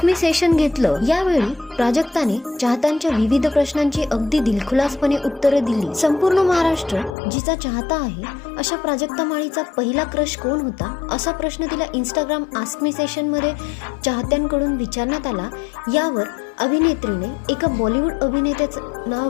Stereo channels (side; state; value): right; drops out; at 7.2 s